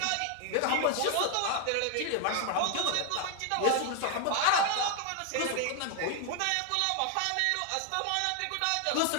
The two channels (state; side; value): different; both; correlation 0.00